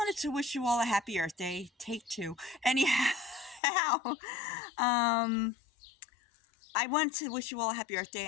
to wish you all a happy Earth Day. Take two. Anyhow, um, I want to wish you all a happy Earth Day.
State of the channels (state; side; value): drops out; right; at 3.6 s